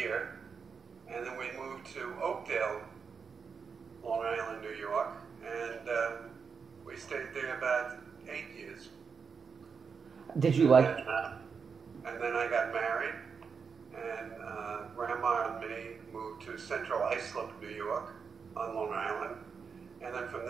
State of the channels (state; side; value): quieter; left; 5.9 dB